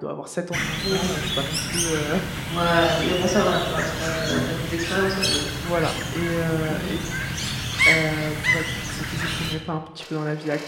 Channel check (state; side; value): identical; both; correlation 1.00